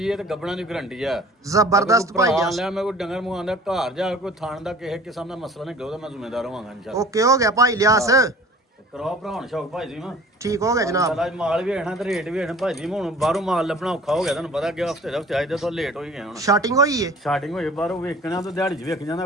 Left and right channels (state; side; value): normal; both; correlation 0.47